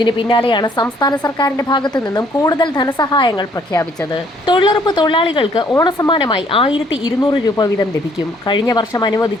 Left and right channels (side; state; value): both; normal; correlation 0.64